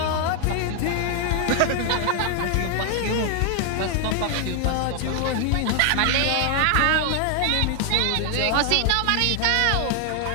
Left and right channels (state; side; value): different; both; correlation 0.00